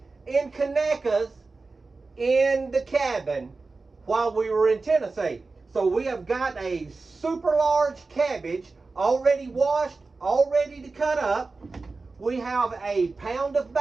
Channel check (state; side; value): quieter; left; 3.8 dB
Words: and Conecuhs in the cabin while we were in Tennessee. So we have got a super large cabbage already washed, all ready to cut up. We have a pound of